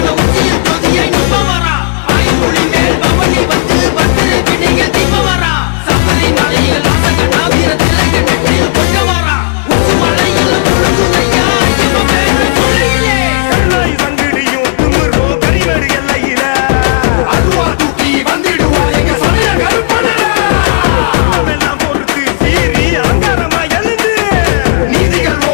உச்சியில் ஜோதியை நிற்பவரா ஆயுமொழி மேல் பவனி வந்து பத்திரை பிடியில் தீபவரா சபரிமலையில் வாசகனா வீர திலக நெற்றியில் கொண்டவரா உச்சி மலையில் குழுங்கும் ஐயா ஐயப்ப பேர சொல்லையிலே கருணாய் சங்கிடியும் திமிரோ கரிமேடு எல்லையில அதுவா தூக்கி வந்திடுவார் எங்க சமய கருப்பனடா எல்லாம் பொறுத்து சீறி அங்காரமா எழுந்து நீதிகள்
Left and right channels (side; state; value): right; silent; digital silence